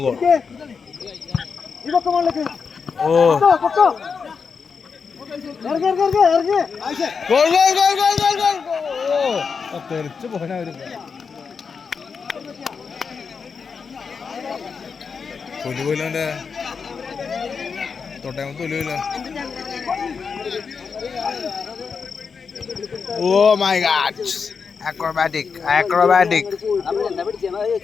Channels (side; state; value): right; quieter; 5.6 dB